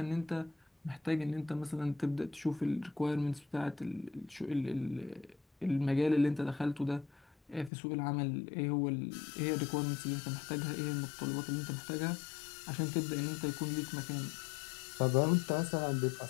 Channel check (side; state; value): right; drops out; at 7.7 s